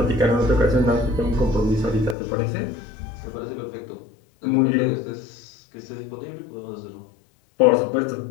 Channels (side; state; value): right; drops out; at 2.1 s